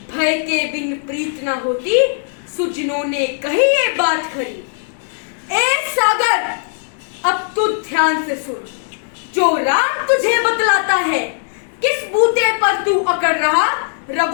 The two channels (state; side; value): silent; right; digital silence